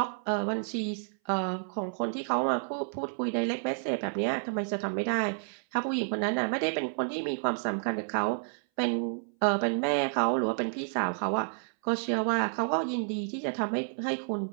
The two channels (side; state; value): left; silent; 58 dB below the other